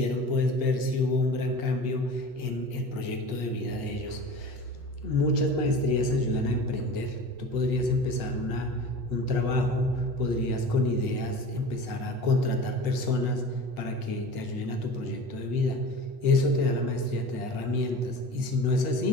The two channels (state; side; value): late; left; 8.2 ms